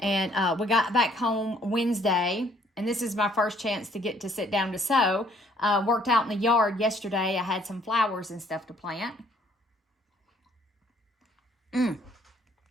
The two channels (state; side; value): normal; both; correlation 0.63